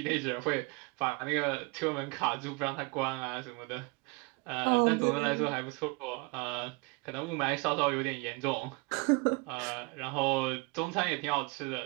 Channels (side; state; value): left; quieter; 27.3 dB